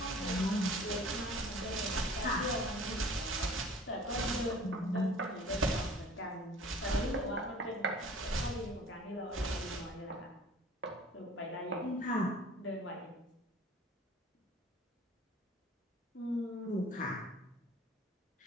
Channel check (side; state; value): both; normal; correlation 0.47